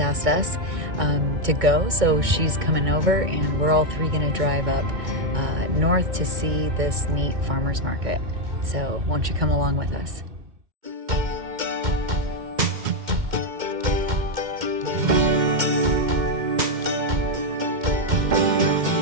us to go, so she's coming over, and we're all three gonna drive up north to see this neat farmers market. So won't you come along with us?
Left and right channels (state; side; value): late; left; 2.1 ms